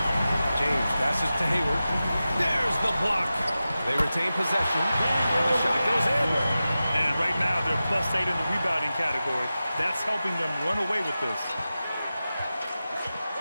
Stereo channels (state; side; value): inverted; both; correlation -0.94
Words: James passes to Hayward. There's the block. They retain possession. And the shot goes in. And right now, they're +8 in the rebounding category. That's helping them run away with this.